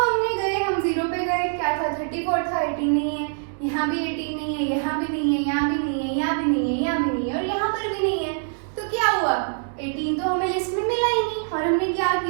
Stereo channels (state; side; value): silent; left; 62 dB below the other